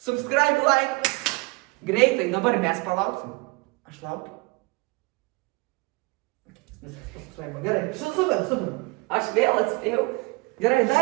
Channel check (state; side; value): quieter; left; 26.3 dB